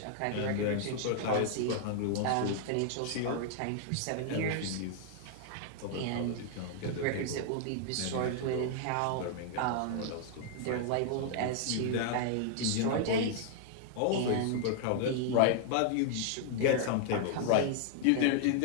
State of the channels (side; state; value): both; different; correlation -0.01